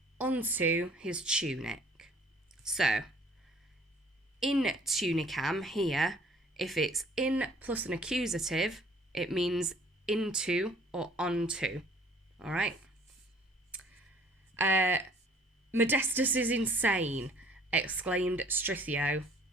onto his tunic. So, in tunicam here, if it's in plus an accusative, it means into or onto. All right? Modestus is insane, exclaimed Strithio,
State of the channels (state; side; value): normal; both; correlation 0.56